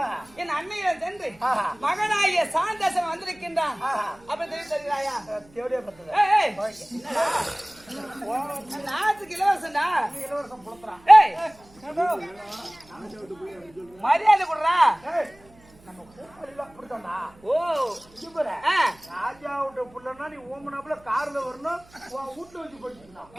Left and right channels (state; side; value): noise; right; hum, 27 dB below the sound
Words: என் அன்னையில சென்று மகனாகிய சாந்தசன் வந்திருக்கின்றான் அப்படி தெரிவித்தாயா? நாட்டுக்கு இலவசம்டா. மரியாதை கொடுறா. ராஜாவுடைய புள்ளனா நீ ஓமனாப்புல கார்ல வரணும், வீட்டுல வச்சு படிச்சுக்கணும்.